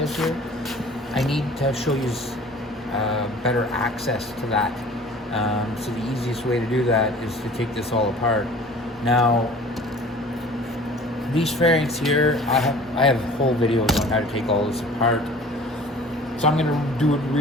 here, I need to show you better access to that. So the easiest way to do that is to take this all apart. Now, these fairings here, I have whole videos on how to take all this apart. So I'm gonna do it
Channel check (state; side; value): normal; both; correlation 0.46